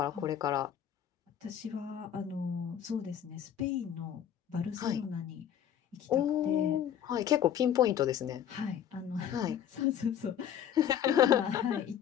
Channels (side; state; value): right; quieter; 9.5 dB